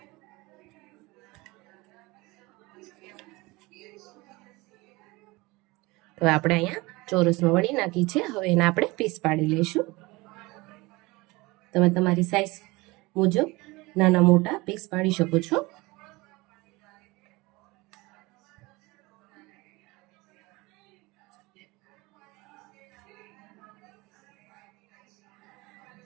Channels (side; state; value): left; quieter; 22.9 dB